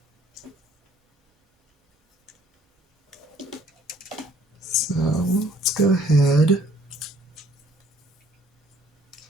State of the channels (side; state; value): both; normal; correlation 0.59